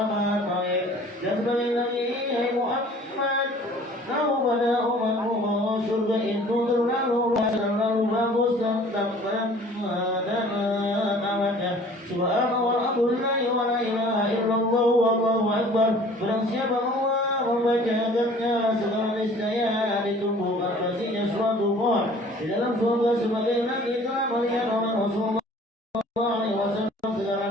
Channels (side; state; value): both; normal; correlation 0.50